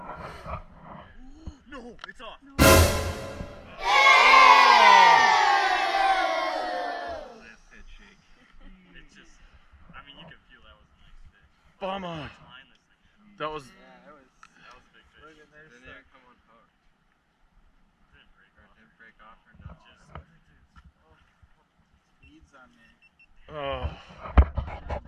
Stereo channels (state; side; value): identical; both; correlation 1.00